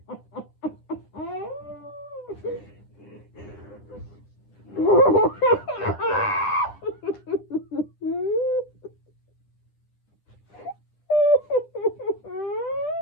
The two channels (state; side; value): late; right; 9.9 ms